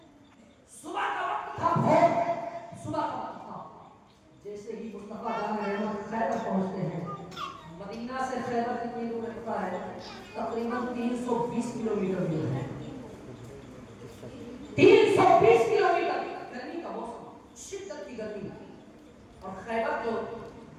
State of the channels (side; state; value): both; identical; correlation 1.00